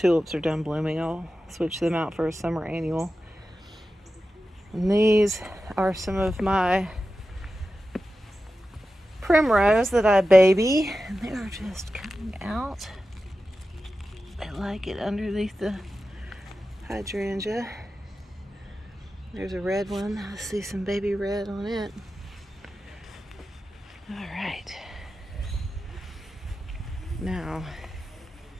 are done blooming, I'll switch them out for a summer annual. And these are some of my primrose that I baby, and they're just coming out. I like it underneath the hydrangea. There's a red one. I see some baby red on it. All right. Now,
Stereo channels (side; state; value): both; normal; correlation 0.93